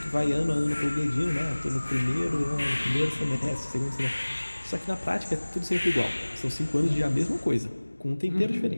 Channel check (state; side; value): inverted; both; correlation -1.00